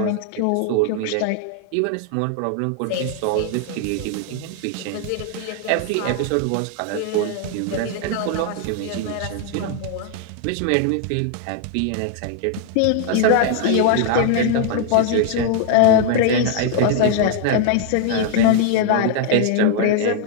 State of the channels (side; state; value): both; different; correlation 0.00